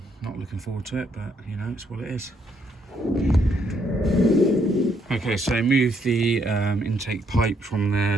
Not looking forward to it, but you know, it's what it is. Okay, so move the intake pipe from there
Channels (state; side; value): normal; both; correlation 0.72